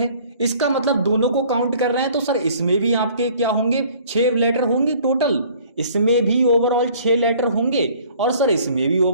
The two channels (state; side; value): inverted; both; correlation -0.53